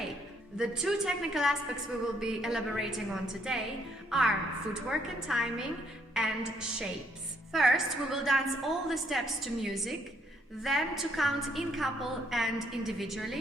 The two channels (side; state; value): both; normal; correlation 0.70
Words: The 2 technical aspects we will be elaborating on today are footwork and timing and shapes. First, we will dance all the steps to music, then to count in couple and